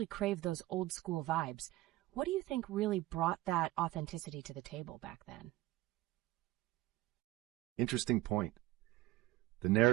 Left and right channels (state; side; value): quieter; left; 17.1 dB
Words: crave those old-school vibes. What do you think really brought that authenticity to the table back then? Interesting point. The